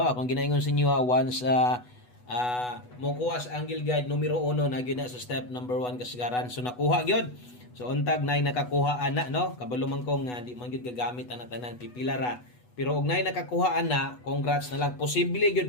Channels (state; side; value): late; right; 8.1 ms